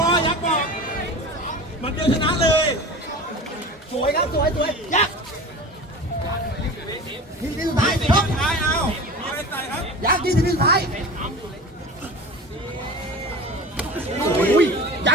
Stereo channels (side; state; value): both; normal; correlation 0.34